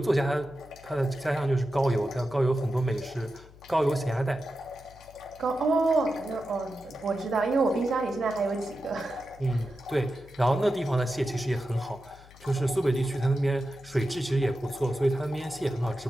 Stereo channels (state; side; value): noise; left; hum, 22 dB below the sound